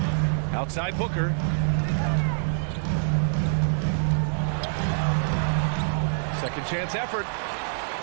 Outside Booker. Second chance effort.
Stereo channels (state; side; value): silent; left; digital silence